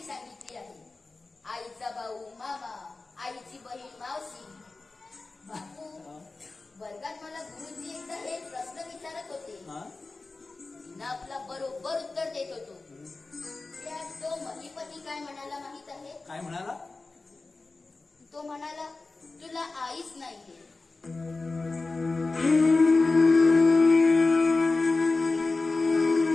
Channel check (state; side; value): quieter; right; 3.6 dB